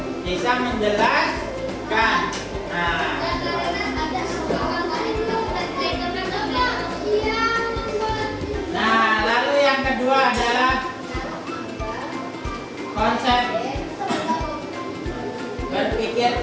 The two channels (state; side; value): identical; both; correlation 1.00